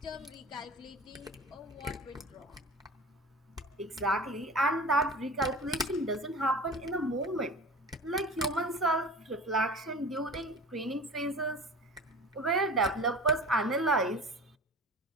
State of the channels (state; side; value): normal; both; correlation 0.36